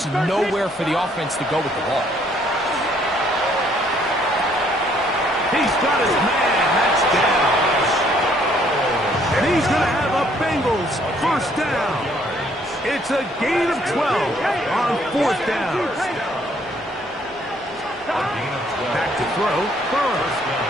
nowhere for the offense to go with the ball. He's got his man. That's down. And he's going to have a Bengals first down. It's a gain of 12 on fourth down. Back to throw. Burrow.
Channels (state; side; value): normal; both; correlation 0.65